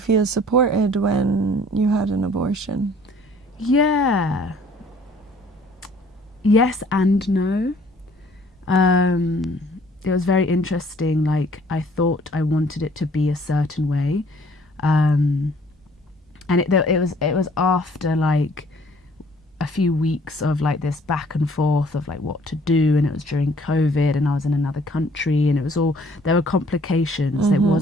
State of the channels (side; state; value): both; normal; correlation 0.57